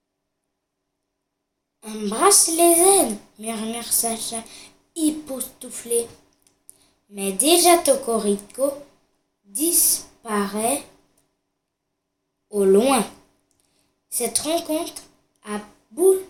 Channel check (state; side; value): identical; both; correlation 1.00